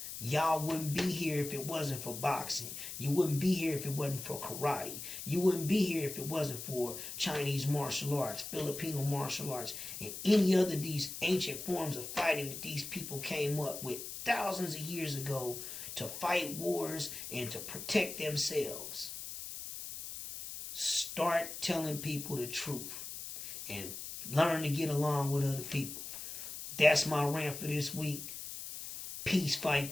Y'all wouldn't be here if it wasn't for boxing. You wouldn't be here if it wasn't for karate. You wouldn't be here if it wasn't for Chinese martial arts, Filipino martial arts, and any other of these ancient forms of fighting that these people came up with thousands of years ago to fight wars and to protect themselves. Start telling people the truth and learn to get along with other people. That's my rant for this week. Peace,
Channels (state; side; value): noise; left; hiss, 8 dB below the sound